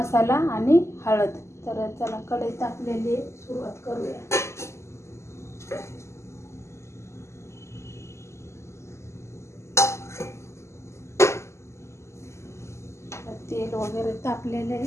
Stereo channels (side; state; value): right; late; 0.13 ms